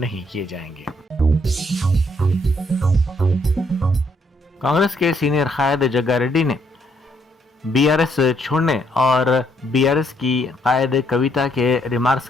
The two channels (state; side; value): normal; both; correlation 0.71